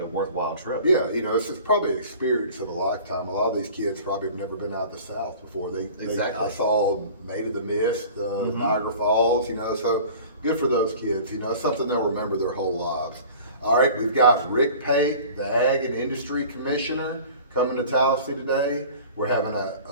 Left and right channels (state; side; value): inverted; both; correlation -0.43